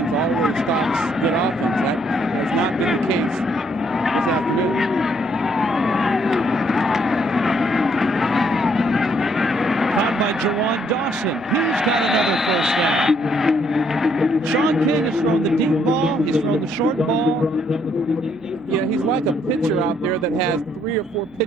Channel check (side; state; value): right; noise; hum, 30 dB below the sound